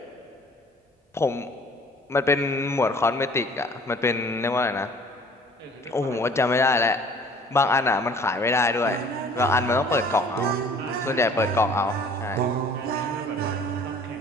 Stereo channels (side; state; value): both; normal; correlation 0.52